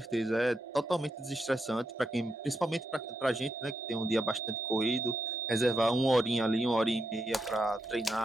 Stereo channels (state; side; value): normal; both; correlation 0.82